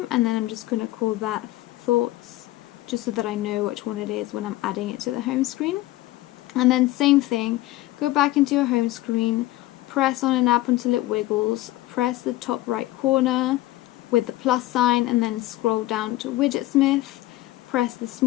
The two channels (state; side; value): quieter; right; 16.8 dB